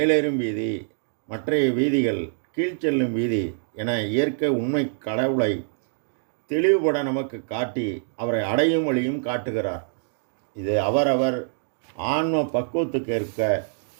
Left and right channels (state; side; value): silent; left; digital silence